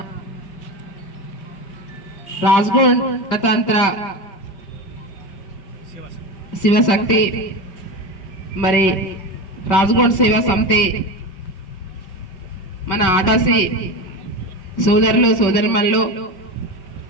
రాజ్గోడ్ గణతంత్ర శివశక్తి మరి రాజ్గోడ్ సేవా సమితి మన ఆడాసి సోదరులు సోదరుమణులు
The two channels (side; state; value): right; late; 5.1 ms